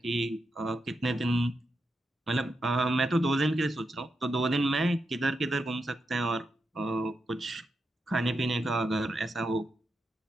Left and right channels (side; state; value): both; normal; correlation 0.85